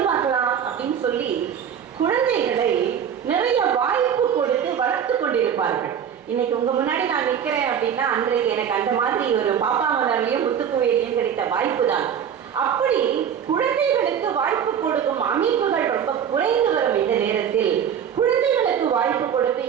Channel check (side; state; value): left; quieter; 8.4 dB